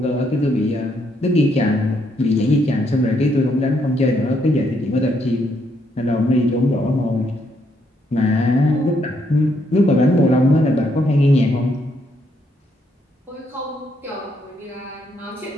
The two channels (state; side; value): normal; both; correlation 0.74